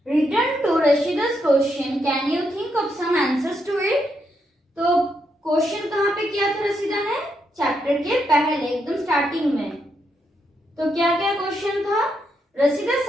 return to Rashida's question, can you think of some answers to it. तो क्वेश्चन कहाँ पे किया था रशीदा ने, चैप्टर के पहले एकदम स्टार्टिंग में। तो क्या क्या क्वेश्चन था, Rashida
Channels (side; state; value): both; normal; correlation 0.80